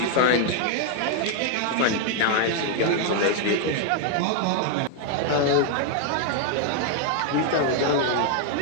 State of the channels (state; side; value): different; both; correlation 0.00